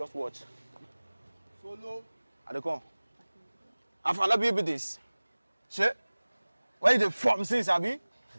watch. Solo. I dey come. I found be this. Shit. Where you dey form since, Abi?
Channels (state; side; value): inverted; both; correlation -1.00